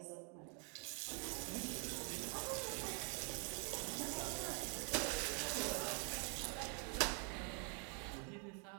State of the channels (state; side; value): quieter; left; 39.9 dB